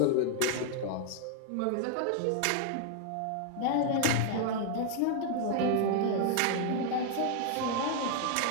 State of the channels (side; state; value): both; different; correlation 0.00